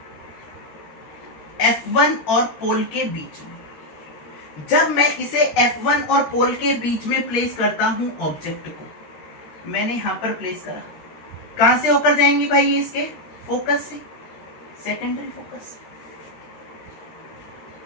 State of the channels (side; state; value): right; late; 13 ms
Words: F1 और पोल के बीच में। जब मैं इसे F1 और पोल के बीच में प्लेस करता हूं ऑब्जेक्ट को, मैंने यहां पर प्लेस करा, कहां से होकर जाएंगी भाई ये, इसके फोकस से, सेकेंडरी फोकस।